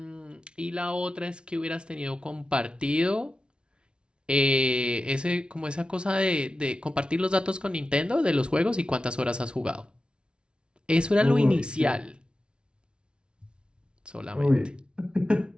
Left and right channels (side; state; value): left; late; 0.056 ms